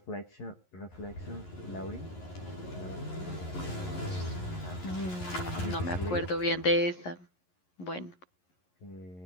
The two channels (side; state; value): right; late; 11 ms